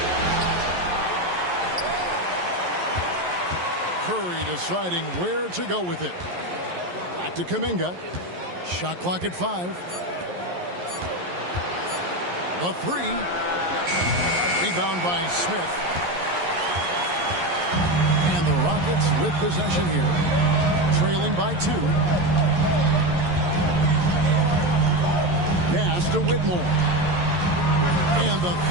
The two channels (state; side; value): late; left; 11 ms